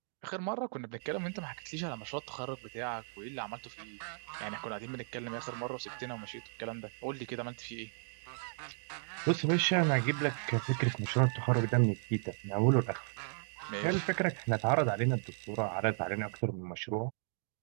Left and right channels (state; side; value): silent; left; digital silence